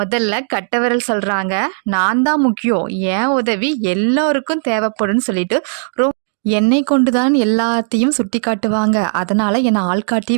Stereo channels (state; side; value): silent; left; digital silence